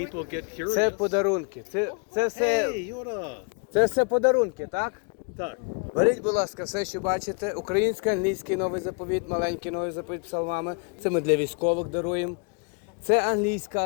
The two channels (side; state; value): right; quieter; 36.3 dB